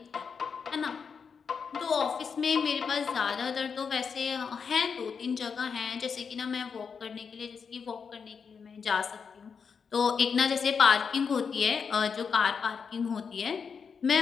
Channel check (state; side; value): quieter; right; 6.0 dB